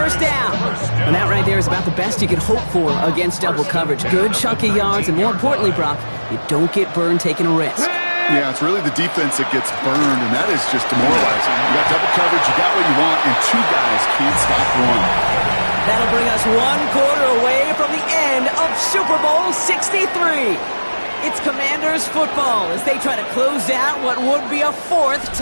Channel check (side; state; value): both; inverted; correlation -1.00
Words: down. And that right there is about the best you could hope for against double coverage. Good chunk of yards, and more importantly, Brock, you don't get burned taking a risk. Yeah, it's really the defense that gets burned, and that is just demoralizing. You got double coverage, you got what you want, and 2 guys can't stop one. That'll bring us 1 quarter away from the end of Super Bowl 63. It's Commanders football as they try to close out what would be a 4th